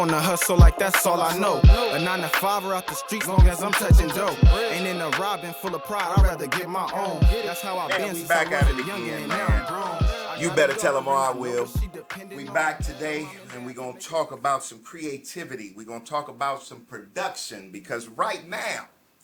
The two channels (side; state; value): both; identical; correlation 1.00